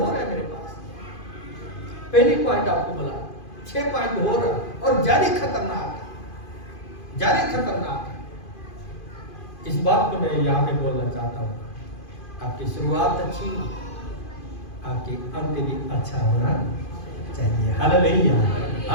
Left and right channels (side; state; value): right; late; 2.5 ms